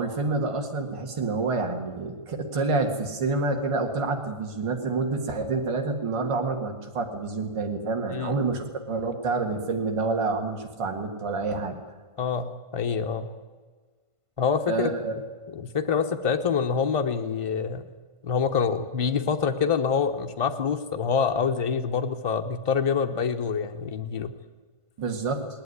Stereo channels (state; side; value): late; left; 1.5 ms